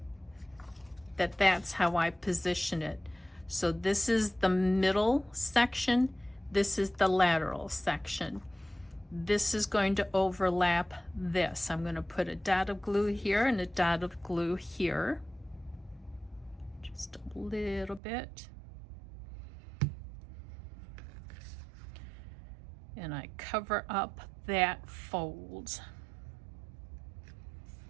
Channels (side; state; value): left; drops out; at 18.0 s